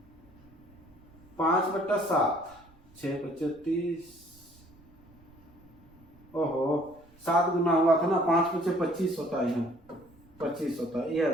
5/7, 6 पचे 30, ओहो 7 गुना हुआ था ना, 5 पचे 25 होता है, यहाँ 25 होता है, ये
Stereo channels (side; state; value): right; noise; rumble, 27 dB below the sound